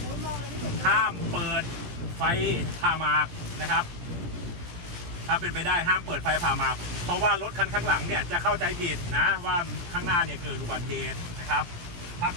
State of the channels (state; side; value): late; left; 17 ms